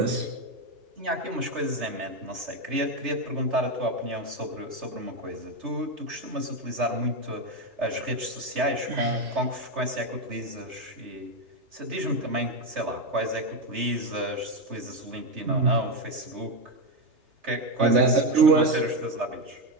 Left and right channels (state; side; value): late; left; 3.3 ms